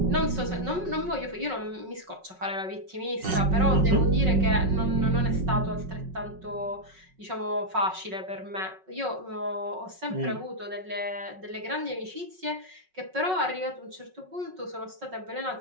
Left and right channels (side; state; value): left; late; 5.4 ms